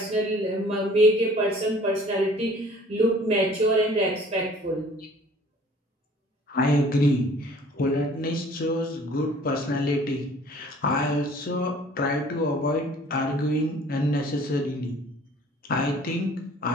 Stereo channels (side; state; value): both; normal; correlation 0.52